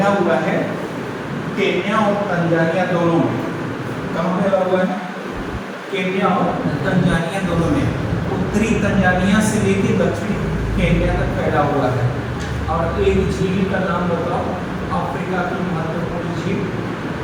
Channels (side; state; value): both; identical; correlation 1.00